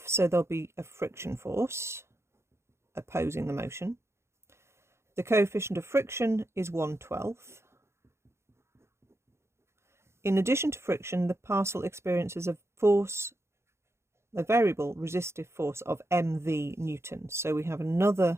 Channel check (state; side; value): late; left; 0.13 ms